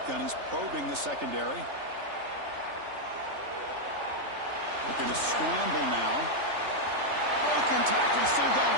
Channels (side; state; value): left; late; 3.4 ms